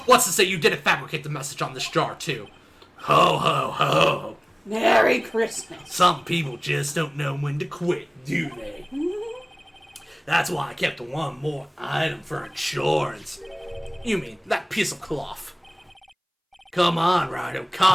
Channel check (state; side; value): identical; both; correlation 1.00